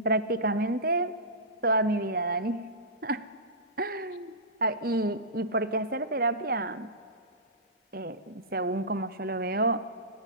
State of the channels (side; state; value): both; normal; correlation -0.19